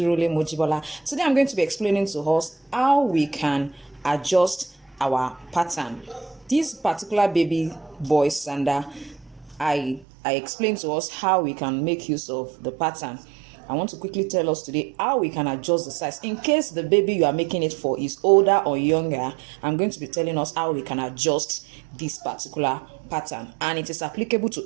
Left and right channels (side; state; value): left; drops out; at 10.1 s